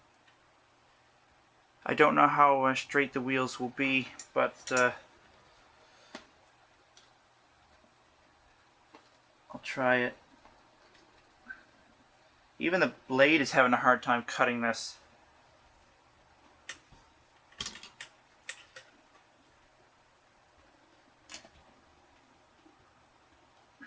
I don't know how straight the wheels will be, but I'll try it. Even the blade is having a hard time cutting this.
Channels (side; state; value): both; identical; correlation 1.00